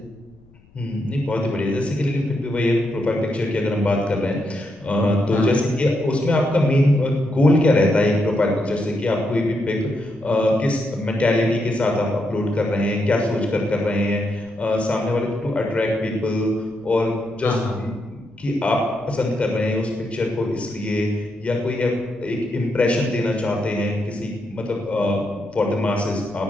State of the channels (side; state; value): left; noise; rumble, 28 dB below the sound